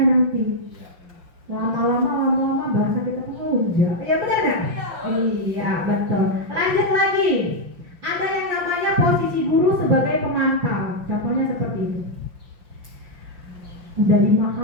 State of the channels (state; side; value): late; left; 5.7 ms